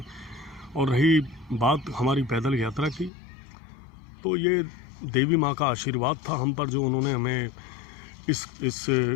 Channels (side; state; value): right; drops out; at 3.1 s